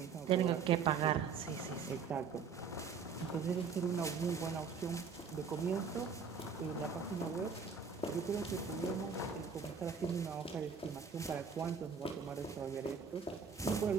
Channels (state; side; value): quieter; left; 5.8 dB